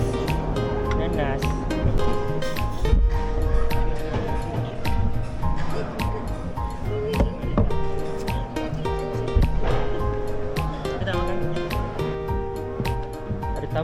Nanas. Kita tak makan. Ada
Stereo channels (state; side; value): identical; both; correlation 1.00